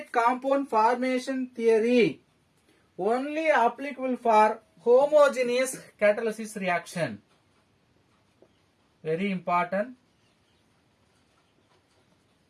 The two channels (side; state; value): both; identical; correlation 1.00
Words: compound formation theory only applicable for homogeneous catalysis reaction. Very important.